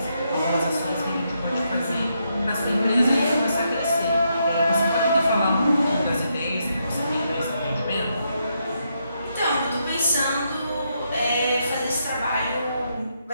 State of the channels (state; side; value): inverted; both; correlation -0.80